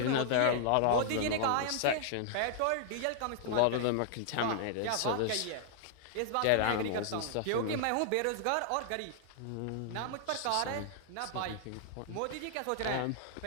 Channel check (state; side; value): different; both; correlation -0.01